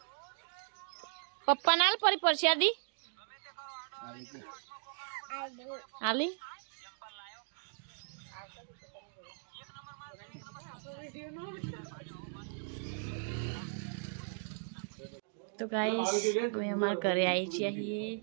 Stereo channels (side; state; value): left; silent; digital silence